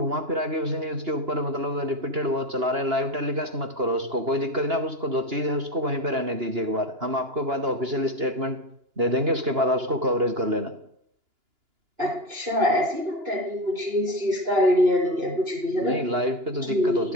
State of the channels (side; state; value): left; late; 2.9 ms